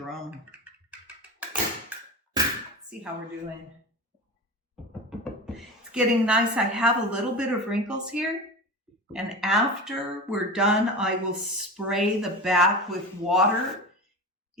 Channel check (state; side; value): normal; both; correlation 0.28